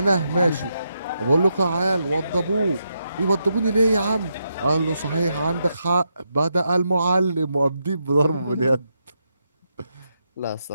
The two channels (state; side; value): inverted; both; correlation -0.83